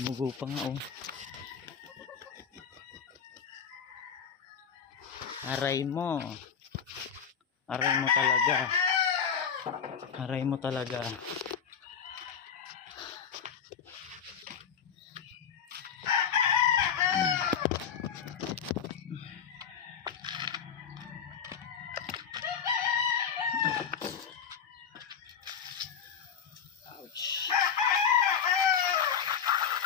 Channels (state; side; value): quieter; right; 7.4 dB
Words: pa nga oh. Aray mo talaga. Ouch.